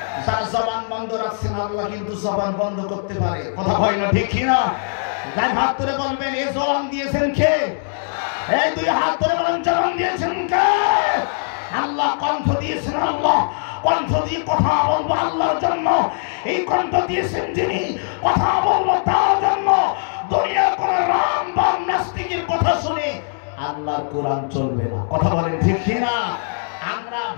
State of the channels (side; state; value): right; silent; 65 dB below the other